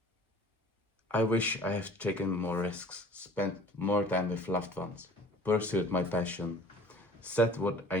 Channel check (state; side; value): normal; both; correlation 0.48